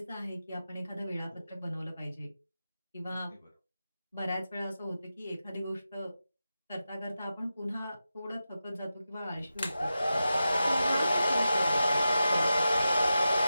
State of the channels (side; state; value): both; inverted; correlation -0.91